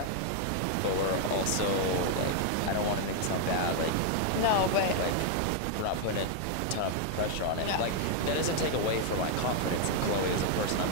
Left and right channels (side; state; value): both; different; correlation 0.00